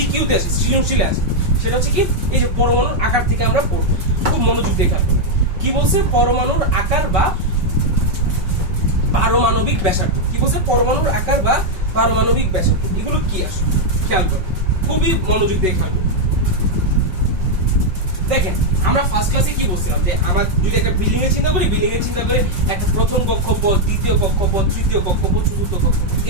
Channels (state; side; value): late; left; 5.3 ms